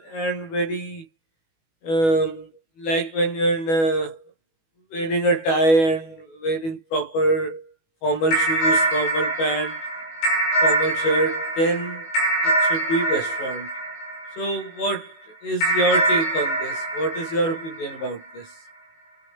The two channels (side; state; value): right; late; 19 ms